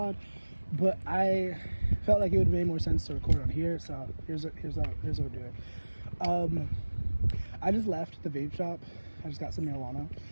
but I felt like it would have made more sense to record on here. So here's what we're doing. I just left the vape shop. I just got some marijuana,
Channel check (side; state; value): both; inverted; correlation -1.00